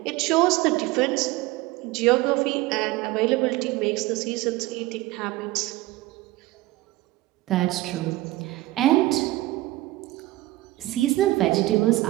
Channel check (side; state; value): left; quieter; 18.4 dB